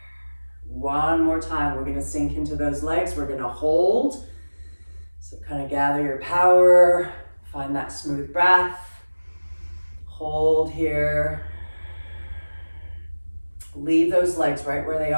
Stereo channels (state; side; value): inverted; both; correlation -1.00